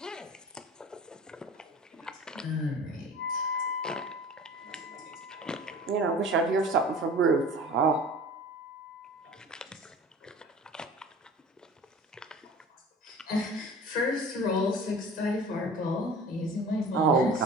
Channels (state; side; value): normal; both; correlation 0.41